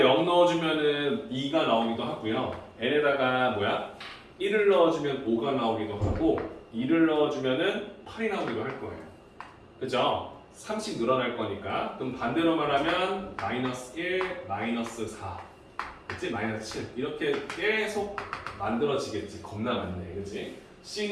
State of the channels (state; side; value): identical; both; correlation 1.00